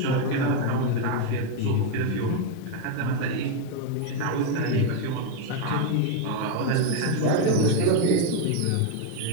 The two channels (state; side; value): different; both; correlation 0.02